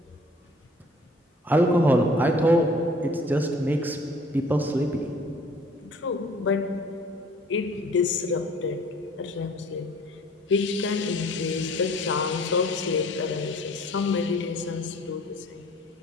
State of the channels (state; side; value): normal; both; correlation 0.52